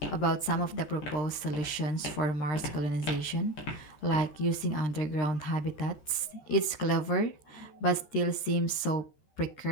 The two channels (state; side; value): late; right; 13 ms